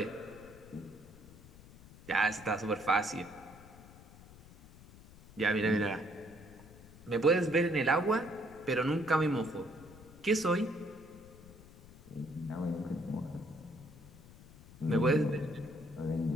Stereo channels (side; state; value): left; noise; rumble, 20 dB below the sound